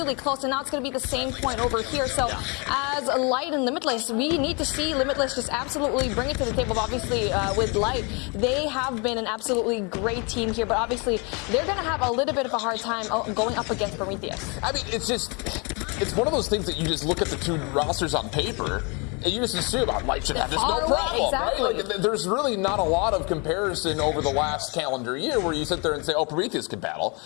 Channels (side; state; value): right; quieter; 31.7 dB